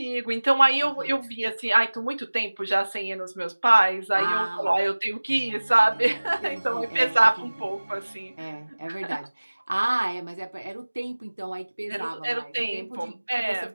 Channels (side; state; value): both; inverted; correlation -1.00